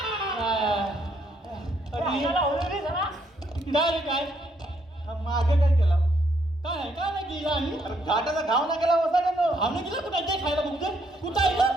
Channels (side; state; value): both; normal; correlation 0.72